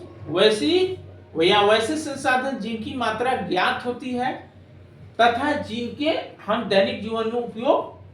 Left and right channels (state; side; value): identical; both; correlation 1.00